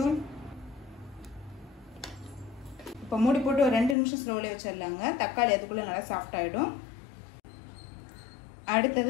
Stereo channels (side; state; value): right; drops out; at 4.0 s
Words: இப்போ மூடி போட்டு ஒரு 2 நிமிஷம் ஸ்லோல வச்சிடலாங்க. தக்காளி அதுக்குள்ள நல்லா சாஃப்ட் ஆயிடும்.